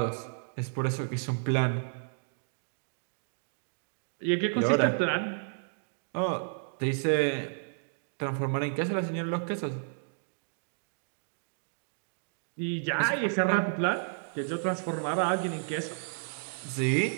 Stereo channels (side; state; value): left; silent; digital silence